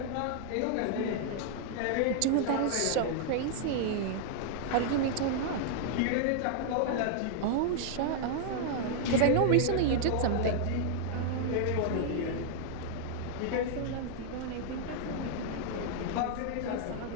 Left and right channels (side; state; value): both; different; correlation 0.00